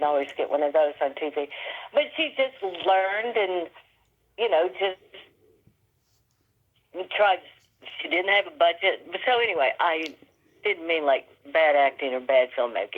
always get one of those on TV. But she just learned and, you know, just tried. She didn't have a budget. But so anyway, I didn't mean like bad acting or bad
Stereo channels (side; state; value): both; identical; correlation 1.00